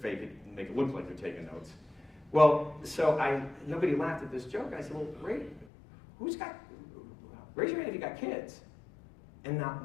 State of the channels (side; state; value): right; drops out; at 5.7 s